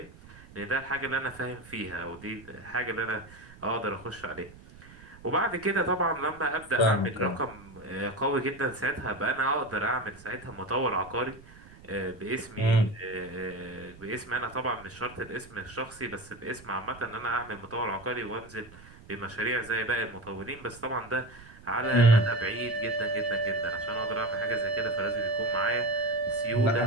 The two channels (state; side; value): noise; right; rumble, 20 dB below the sound